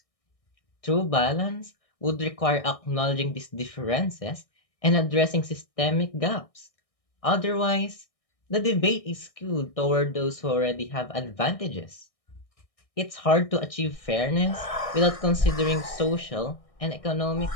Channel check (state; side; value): late; right; 1.6 ms